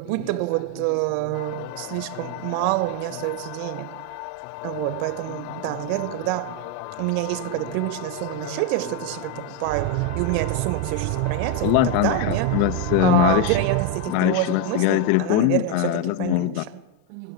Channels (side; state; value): both; different; correlation 0.02